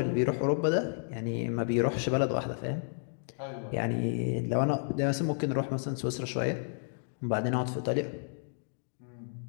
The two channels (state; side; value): silent; right; digital silence